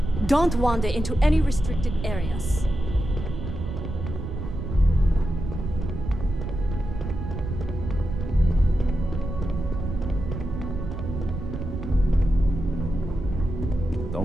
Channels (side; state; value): right; noise; rumble, 6 dB below the sound